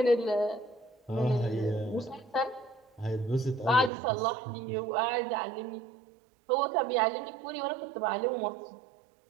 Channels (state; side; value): drops out; left; at 3.9 s